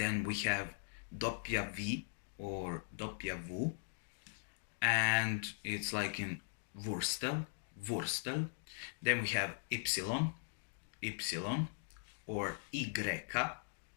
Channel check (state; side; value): silent; right; digital silence